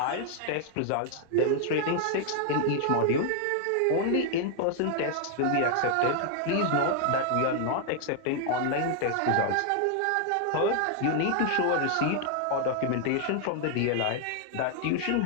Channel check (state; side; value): different; both; correlation 0.00